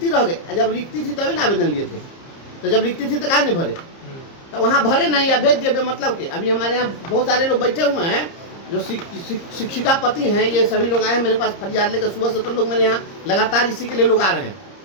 रह गई। जब रिक्ति थी तभी ना आवेदन लिए थे, तो जब रिक्ति थी तो कहाँ नहीं भरे? तो वहाँ भरे नहीं या भेज दिए मतलब के। अभी हमारे यहाँ बहुत सारे लोग बैठे हुए हैं जो शिक्षिका पति हैं, ये सभी लोग आए मेरे पास फरियाद लेकर सुबह से, तो लोग मेरे यहाँ लगातार इसी के लिए लोग आ रहे हैं।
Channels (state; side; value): late; right; 30 ms